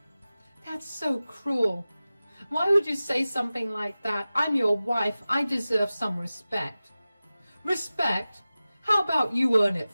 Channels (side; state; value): both; inverted; correlation -0.96